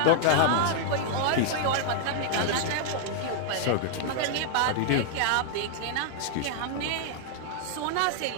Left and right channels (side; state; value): both; different; correlation -0.01